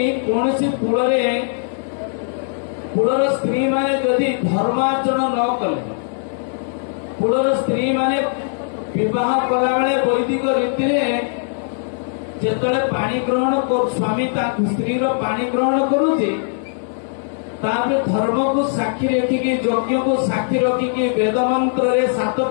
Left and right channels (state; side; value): silent; right; 66 dB below the other